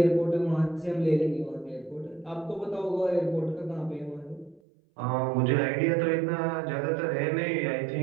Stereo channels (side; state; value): left; drops out; at 4.6 s